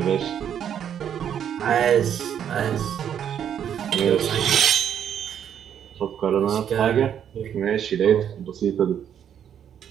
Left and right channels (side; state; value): left; quieter; 9.0 dB